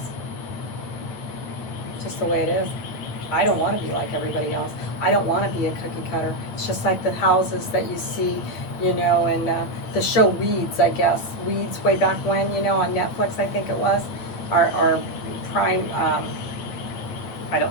It's just the way it is. I don't want to be like everybody else. I don't want to be a cookie cutter. It's just like the houses that you see, in the show Weeds, I guess. Weeds way back when, on Netflix, I think it was. Or Prime, I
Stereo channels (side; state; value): right; late; 8.7 ms